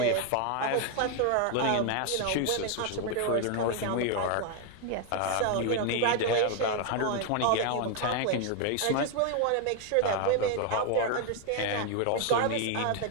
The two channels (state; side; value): different; both; correlation 0.01